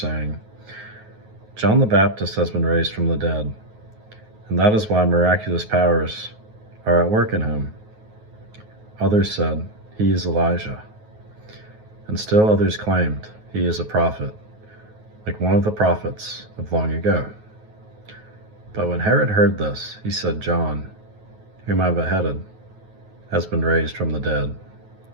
"John the Baptist has been raised from the dead, and that is why miraculous powers are at work in him." Others said, "He is Elijah." And still others claimed, "He is a prophet, like one of the prophets of long ago." But when Herod heard this, he said, "John, whom I beheaded, has been raised from the dead."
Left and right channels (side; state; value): left; late; 9.4 ms